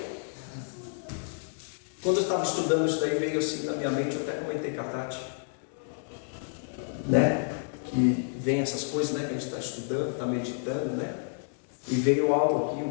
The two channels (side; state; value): right; silent; digital silence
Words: Quando eu estava estudando isso daí, veio assim na minha mente, eu até comentei com a Tati, né? Que vem essas coisas, né? Que a gente está estudando, está meditando, né? E veio algo aqui,